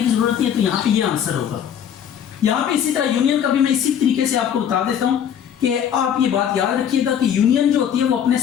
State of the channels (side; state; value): right; quieter; 8.9 dB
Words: की जरूरत नहीं है, तो यहाँ पे ये आंसर होगा। यहाँ पे इसी तरह यूनियन का भी मैं इसी तरीके से आपको बता देता हूँ कि आप ये बात याद रखिएगा कि यूनियन जो होती है वो अपने